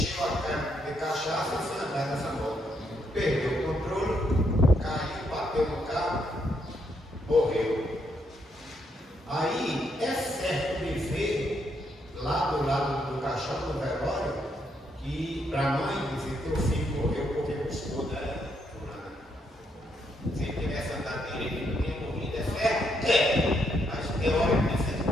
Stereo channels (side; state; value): both; normal; correlation 0.76